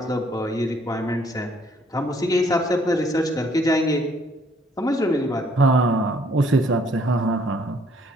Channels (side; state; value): both; normal; correlation 0.63